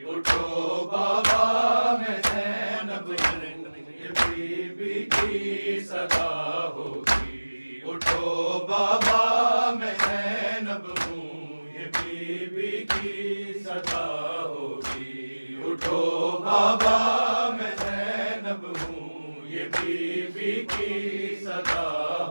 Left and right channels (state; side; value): inverted; both; correlation -1.00